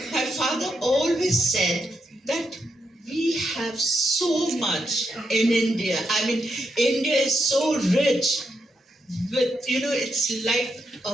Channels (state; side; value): normal; both; correlation 0.82